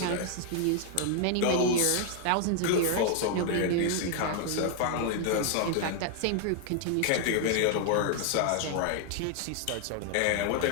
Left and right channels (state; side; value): different; both; correlation 0.00